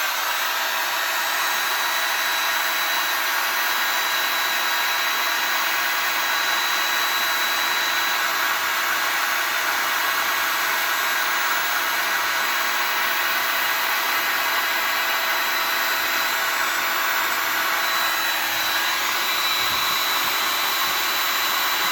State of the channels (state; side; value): identical; both; correlation 1.00